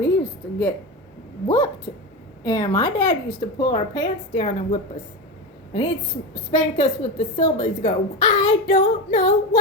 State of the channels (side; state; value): both; normal; correlation 0.20